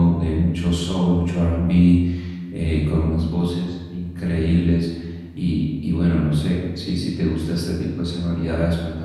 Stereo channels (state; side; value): identical; both; correlation 1.00